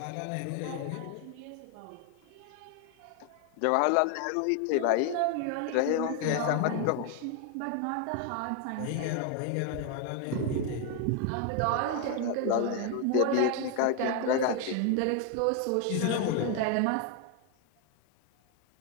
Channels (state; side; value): different; both; correlation 0.01